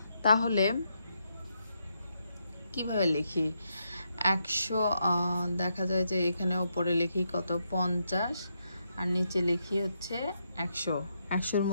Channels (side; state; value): both; inverted; correlation -0.81